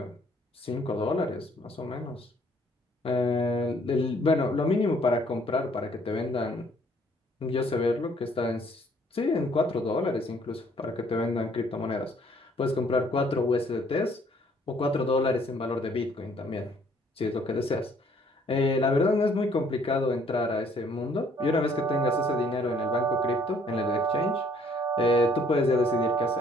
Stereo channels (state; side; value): normal; both; correlation 0.62